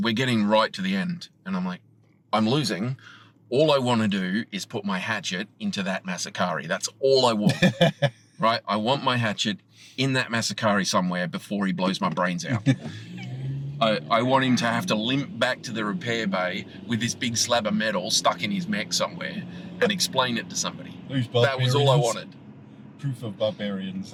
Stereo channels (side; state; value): both; identical; correlation 1.00